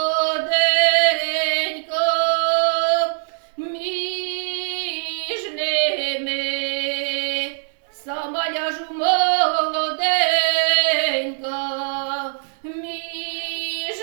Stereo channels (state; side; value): silent; left; digital silence